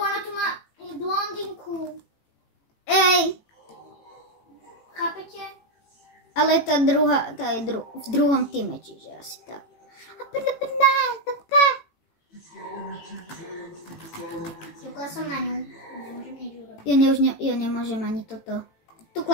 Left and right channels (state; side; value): late; right; 18 ms